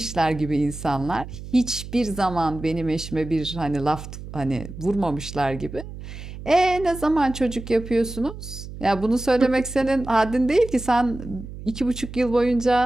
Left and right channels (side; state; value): right; noise; hum, 12 dB below the sound